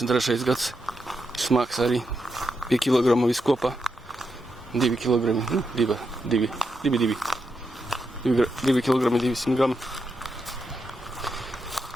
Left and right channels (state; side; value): normal; both; correlation 0.84